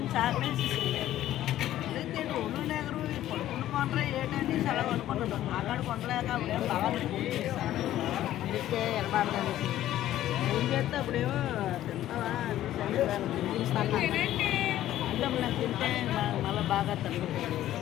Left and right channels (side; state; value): right; quieter; 13.2 dB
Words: ఆపేసి ఒళ్ళు పడుకున్న కొండ్రా ఏంటంటే సెలవు అనుకుంటాడు. అక్కడ కొండలేక అప్పుడేమో బాగా అందుకే ఎనబాడదాన్ని ఏం చేస్తే అప్పుడేమో తింటావా తింటే మళ్ళీ బాగా తగ్గుతుంది.